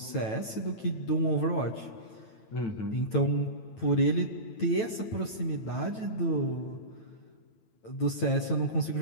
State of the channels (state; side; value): late; right; 9.1 ms